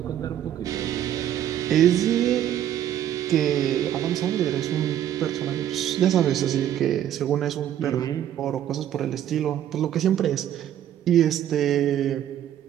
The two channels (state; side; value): quieter; left; 11.0 dB